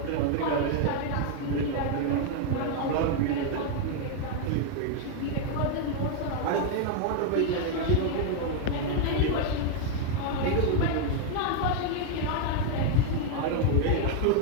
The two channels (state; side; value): different; both; correlation 0.00